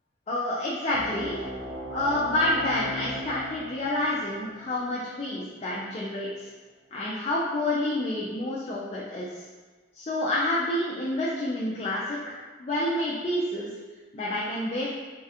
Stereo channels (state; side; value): normal; both; correlation 0.21